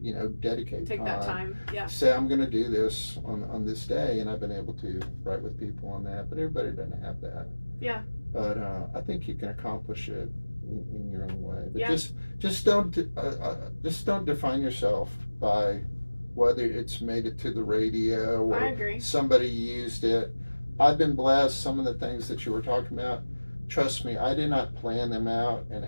you know, dedicate Take that time. Say I'm going to do this on this day, and I've been able to write with people on that. But everybody doesn't have that. Yeah. But I think you can accomplish it in your own way. But just don't define yourself by whether it's made it to the radio or I agree. Somebody used it. I've been blessed. Some of the things that you were talking about, trust me, I did not plan them out and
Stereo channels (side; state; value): both; inverted; correlation -1.00